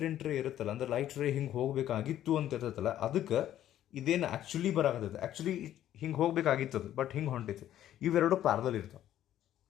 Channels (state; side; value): quieter; right; 12.0 dB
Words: ರೇ ಇರುತ್ತಲ್ಲ, ಅಂದ್ರೆ ಲೈಟ್ ರೇ ಹಿಂಗೆ ಹೋಗಬೇಕಾಗಿತ್ತು ಅಂತ ಇರ್ತೈತಲ್ಲ, ಅದಕ್ಕೆ ಇದೇನು ಆ್ಯಕ್ಚುಲಿ ಬರಾಕತ್ತೈತೆ. ಆ್ಯಕ್ಚುಲಿ ಹಿಂಗೆ ಹೋಗ್ಬೇಕಾಗಿತ್ತದು, ಬಟ್ ಹಿಂಗೆ ಹೊಂಟೈತಿ. ಇವೆರಡು ಪ್ಯಾರಲಲ್ ಇರ್ತಾವೆ